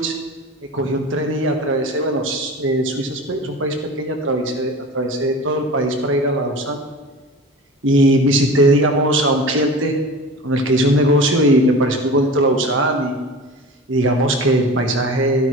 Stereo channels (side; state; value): both; normal; correlation 0.36